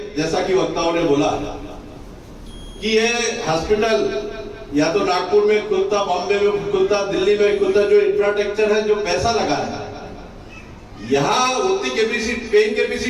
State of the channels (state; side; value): identical; both; correlation 1.00